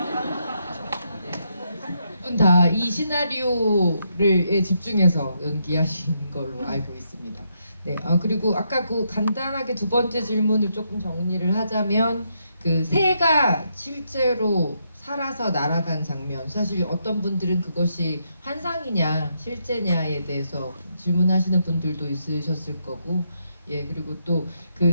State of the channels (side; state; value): both; inverted; correlation -0.78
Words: 두 분 다 이 시나리오를 집중해서 연기하신 걸로 알고 있습니다. 네, 그리고 아까 그 간단하게 두 번째 질문을 조금 정리를 하자면 그 새가 실제로 살아서 날아간 장면, 사실 어떤 분들은 그것이 환상이냐 실제냐에 대해서 질문하시는 분들도 있으셨을 거고, 예, 그리고 또